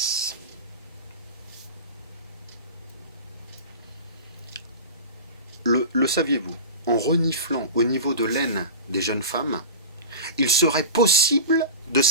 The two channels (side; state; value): both; inverted; correlation -0.30